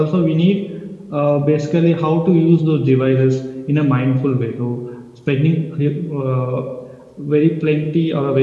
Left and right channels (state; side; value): identical; both; correlation 1.00